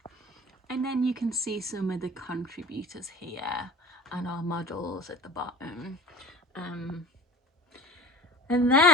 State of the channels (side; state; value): both; normal; correlation 0.40